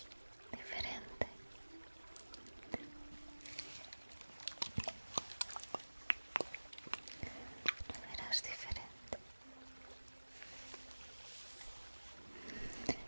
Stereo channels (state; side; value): inverted; both; correlation -1.00